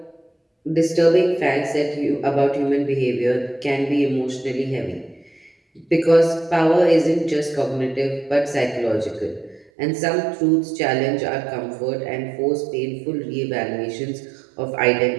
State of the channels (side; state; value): left; drops out; at 9.7 s